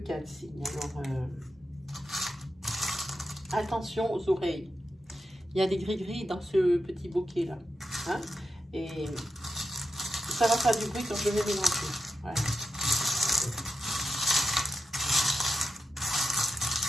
signes. Alors, attention aux oreilles. Il y a des gris-gris dans ce petit bouquet-là. Hein, et ça va faire du bruit quand je vais mélanger. Voilà.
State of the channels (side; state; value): both; normal; correlation 0.88